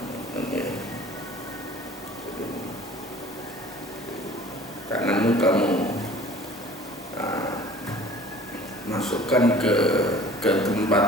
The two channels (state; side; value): normal; both; correlation 0.47